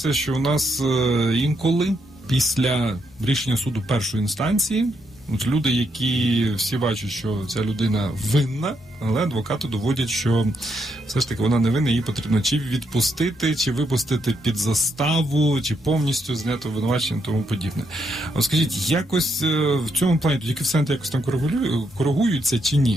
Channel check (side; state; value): both; normal; correlation 0.78